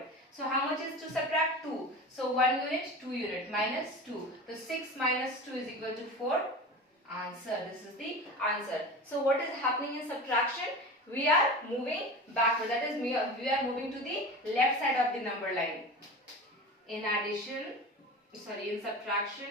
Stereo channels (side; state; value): both; normal; correlation 0.32